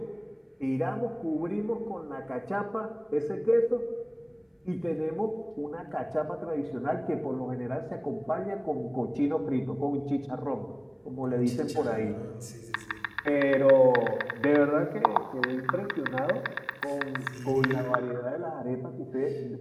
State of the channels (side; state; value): both; identical; correlation 1.00